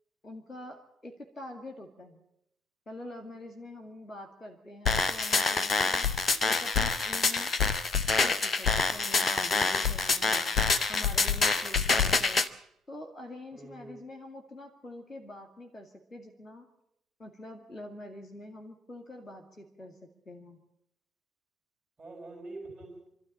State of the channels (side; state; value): right; quieter; 3.7 dB